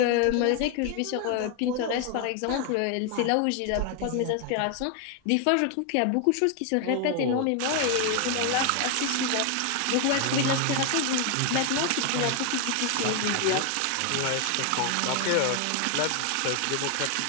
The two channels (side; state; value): both; different; correlation 0.01